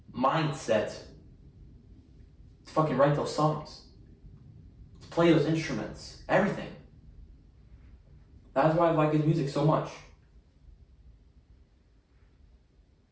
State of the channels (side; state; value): both; identical; correlation 1.00